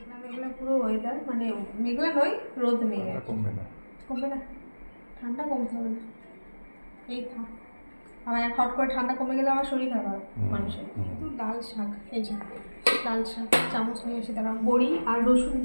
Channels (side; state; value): both; inverted; correlation -1.00